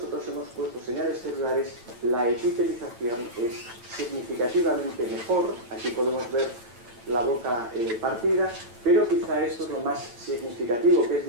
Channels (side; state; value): left; late; 8.8 ms